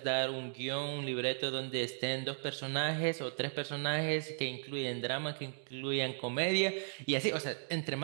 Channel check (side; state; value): left; silent; digital silence